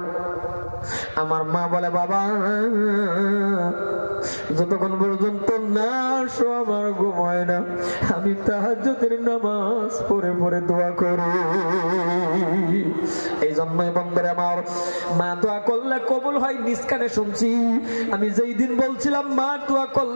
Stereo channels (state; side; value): inverted; both; correlation -1.00